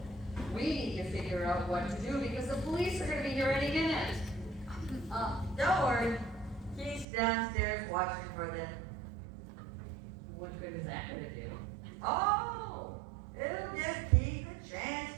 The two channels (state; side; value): drops out; left; at 7.1 s